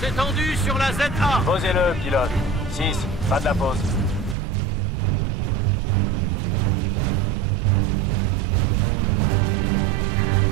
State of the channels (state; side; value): drops out; left; at 4.4 s